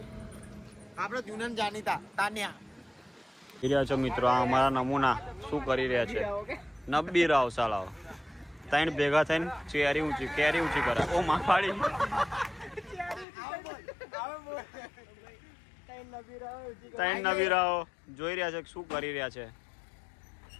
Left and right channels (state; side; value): drops out; right; at 13.2 s